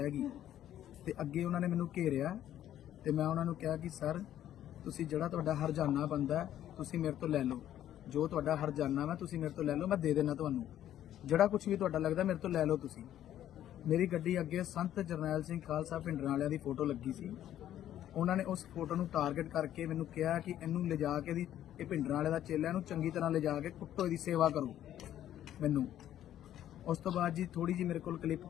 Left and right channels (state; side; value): quieter; right; 11.7 dB